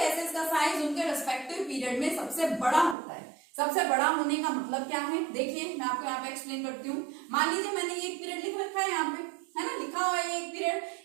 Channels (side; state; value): left; drops out; at 3.0 s